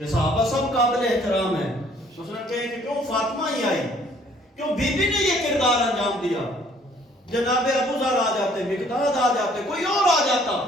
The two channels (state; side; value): normal; both; correlation 0.60